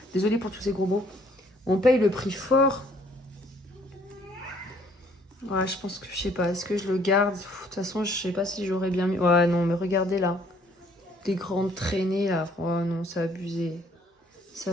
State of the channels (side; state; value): both; normal; correlation 0.62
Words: Désolée pour tous ces gros mots. On paye le prix fort. Ouais, je pense que, je sais pas, est-ce que je le garde? De toute façon, je sais pas si j'aurais bien mis... Ouais, non, mais regardez là. Des grandes traînées là. Oh non, c'est abusé. C'est